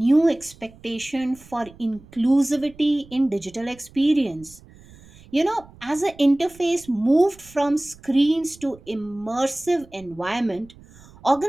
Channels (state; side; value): noise; right; rumble, 23 dB below the sound